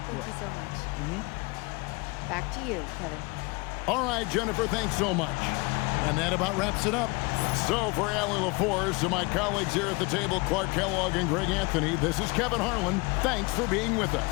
Thank you so much. Back to you, Kevin. All right, Jennifer, thanks so much. And that about wraps it up. So for Allie LaForce and my colleagues here at the table, Clark Kellogg and Greg Anthony, this is Kevin Harlan. Thanks for being with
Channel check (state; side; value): quieter; right; 26.9 dB